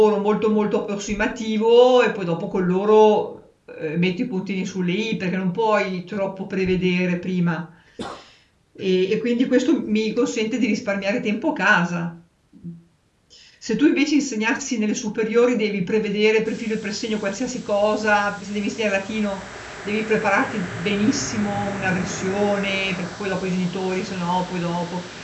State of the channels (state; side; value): identical; both; correlation 1.00